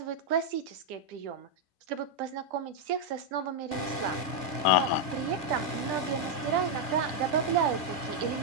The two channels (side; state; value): right; late; 2.2 ms